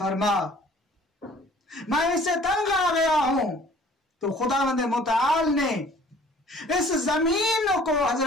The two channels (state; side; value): normal; both; correlation 0.53